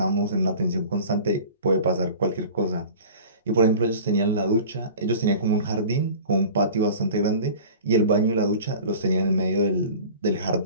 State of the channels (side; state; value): both; inverted; correlation -0.41